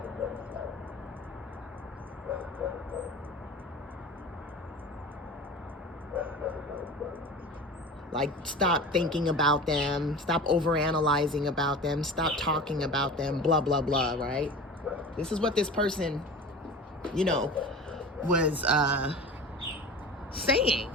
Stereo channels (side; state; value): both; normal; correlation 0.35